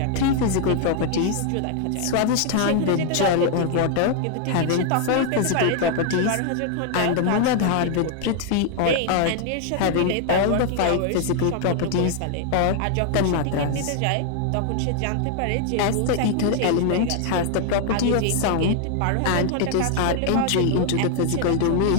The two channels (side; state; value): both; different; correlation 0.00